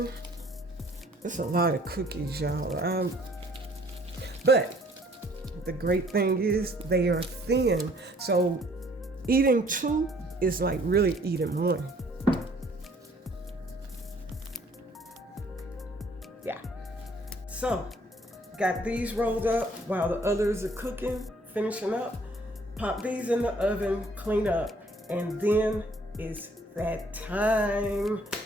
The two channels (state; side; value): normal; both; correlation 0.59